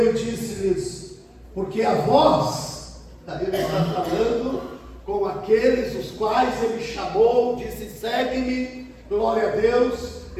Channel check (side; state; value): both; identical; correlation 1.00